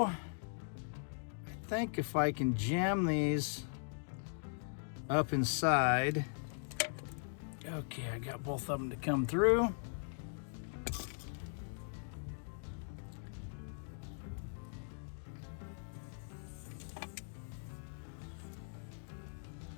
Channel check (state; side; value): silent; right; digital silence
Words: I think if I can jam these up inside. Okay, I got both of them to come through.